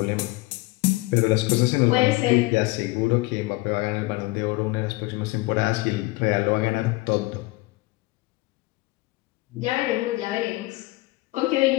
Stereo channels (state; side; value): quieter; right; 21.7 dB